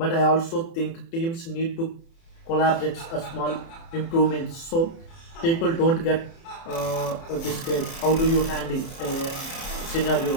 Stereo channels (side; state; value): right; late; 30 ms